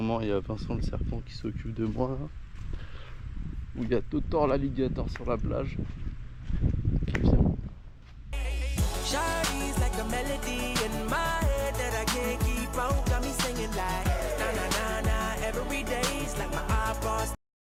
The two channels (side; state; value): both; identical; correlation 1.00